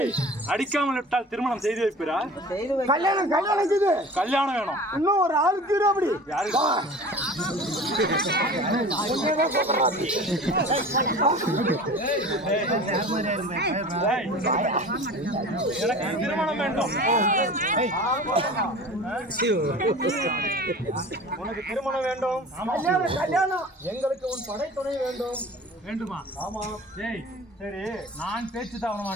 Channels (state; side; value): normal; both; correlation 0.39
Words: அடிக்காமல் விட்டால் திருமணம் செய்து வைப்பீரா? கல்யாணம் கல்யாணம் வேணும். இன்னும் ஒரு ஆளுக்கு அப்படி எனக்கு திருமணம் வேண்டும். உனக்கு திருமணம் வேண்டும். கல்யாணம் எங்களுக்கு உன் படை துணை வேண்டும். வேண்டுமா? ஆமா. சரி, நான் பேச்சு தவற